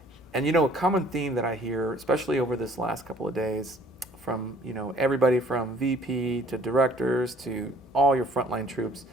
And you know, a common theme that I hear, especially over this last couple of days, from everybody from VP to directors to all your frontline troops,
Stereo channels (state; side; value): normal; both; correlation 0.57